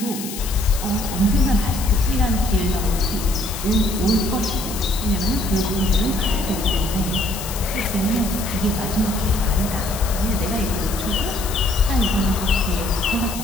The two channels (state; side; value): noise; left; hiss, 9 dB below the sound